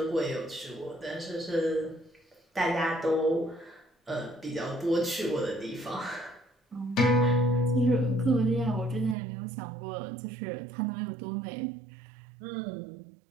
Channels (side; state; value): left; drops out; at 9.2 s